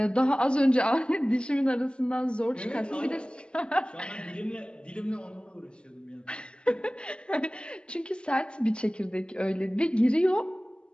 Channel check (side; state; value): right; late; 0.052 ms